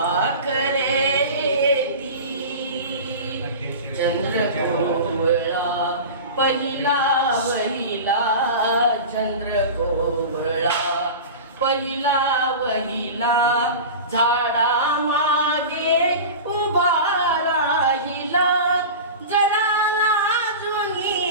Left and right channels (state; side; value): inverted; both; correlation -0.31